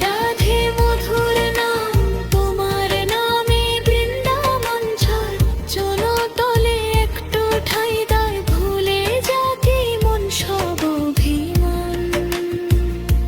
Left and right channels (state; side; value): identical; both; correlation 1.00